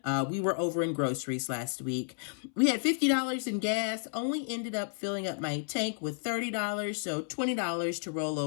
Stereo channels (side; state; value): right; silent; 57 dB below the other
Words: we were over in groceries last week. We had $50 in gas. Only ended up filling up my tank with $30. So $20 to roll